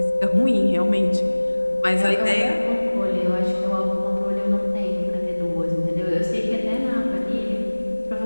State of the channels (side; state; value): both; inverted; correlation -1.00